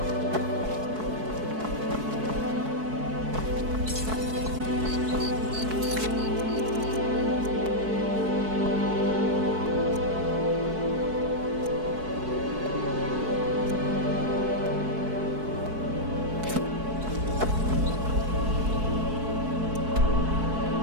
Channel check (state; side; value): late; left; 4.6 ms